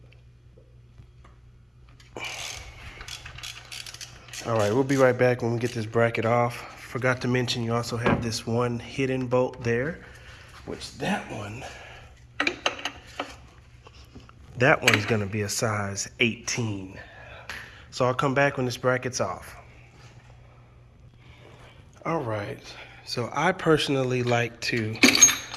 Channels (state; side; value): identical; both; correlation 1.00